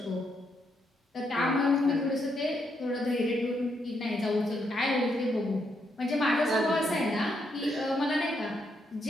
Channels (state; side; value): normal; both; correlation 0.78